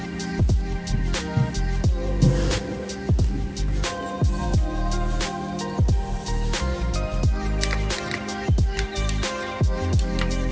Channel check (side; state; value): both; identical; correlation 1.00